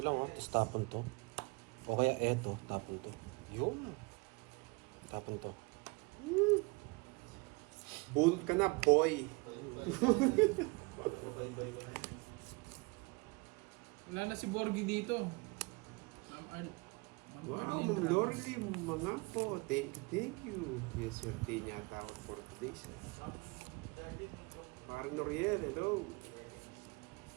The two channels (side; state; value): left; quieter; 27.6 dB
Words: oh, tapos tapon to. O kaya eto, tapon to. Yun. Tapon to. Bunot ka na, boy. Wala na si Borgi dito. Ma'am Arl. Wow, Ma'am Lorly, mga po. Thank you. Yes, swerte niya tawag for today's. Parang Noriel, hello.